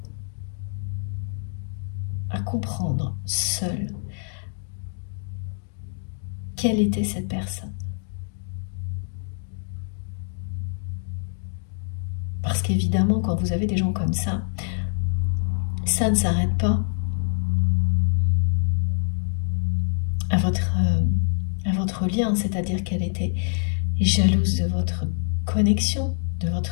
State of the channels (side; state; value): right; silent; digital silence